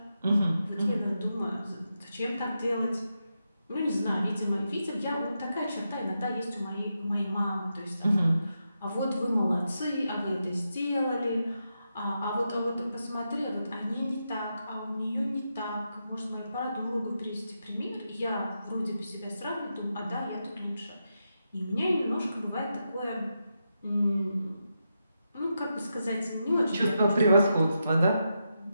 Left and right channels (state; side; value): inverted; both; correlation -0.86